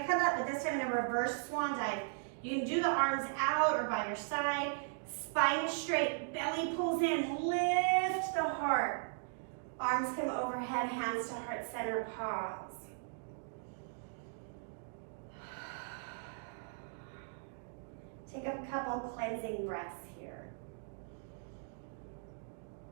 come up, but this time in a reverse swan dive. You can do the arms out or by your side. Spine is straight, belly pulls in, lift the heart. Arms come overhead, hands to heart center, pause. Take a couple cleansing breaths here.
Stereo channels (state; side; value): silent; left; digital silence